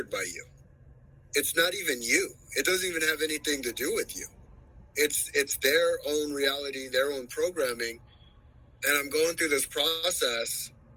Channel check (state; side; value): identical; both; correlation 1.00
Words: by you, it's not even you. It doesn't even have anything to do with you. It's their own reality, their own programming. And I'm going through this process,